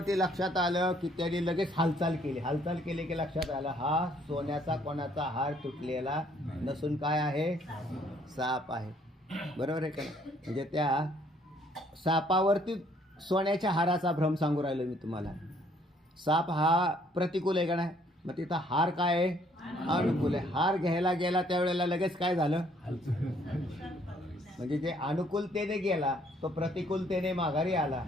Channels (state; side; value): normal; both; correlation 0.64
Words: लक्षात आलं की त्याने लगेच हालचाल केली की लक्षात आलं हा सोन्याचा कोणाचा हार तुटलेला नसून काय आहे? साप आहे. बरोबर आहे का नाही? म्हणजे त्या सापावरती सोन्याच्या हाराचा भ्रम सांगू राहिलो मी तुम्हाला. साप हा प्रतिकूल आहे का नाही? मग तिथं हार काय आहे? अनुकूल आहे. हार घ्यायला गेला त्यावेळेला लगेच काय झालं? म्हणजे जे अनुकूलतेने गेला तो प्रतिकूलतेने माघारी आला.